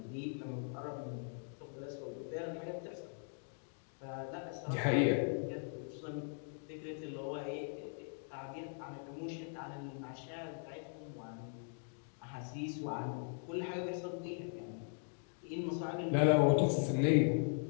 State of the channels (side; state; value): right; silent; 51 dB below the other